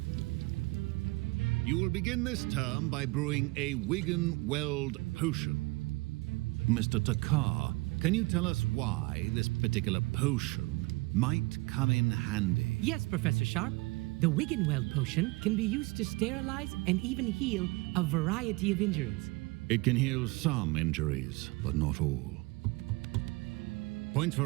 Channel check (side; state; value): left; quieter; 24.3 dB